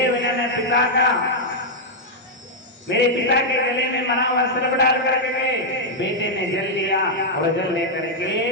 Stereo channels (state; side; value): normal; both; correlation -0.04